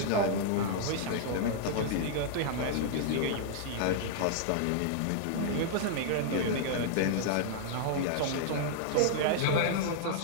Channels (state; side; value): different; both; correlation -0.01